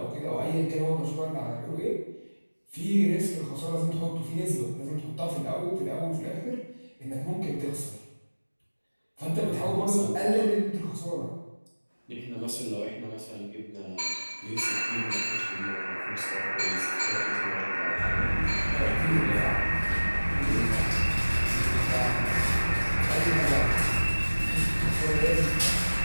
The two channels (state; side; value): inverted; both; correlation -1.00